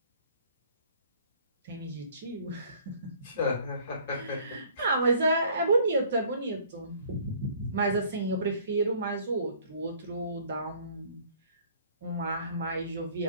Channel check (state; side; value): inverted; both; correlation -0.55